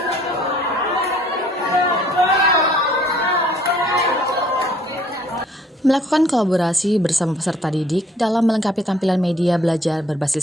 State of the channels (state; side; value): normal; both; correlation 0.58